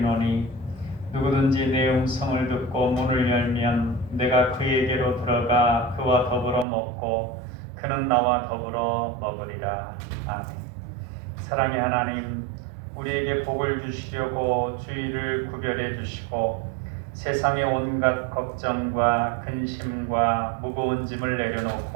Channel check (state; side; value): drops out; left; at 6.7 s